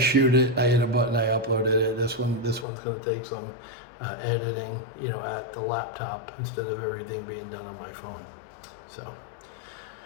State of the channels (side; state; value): right; drops out; at 2.7 s